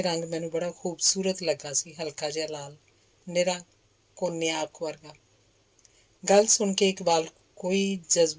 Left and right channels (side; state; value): both; identical; correlation 1.00